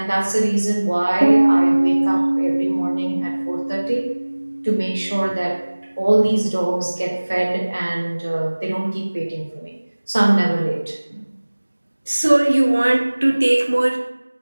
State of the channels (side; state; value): both; inverted; correlation -1.00